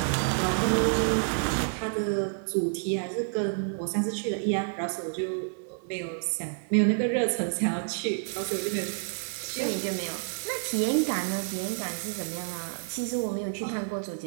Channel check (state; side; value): silent; left; digital silence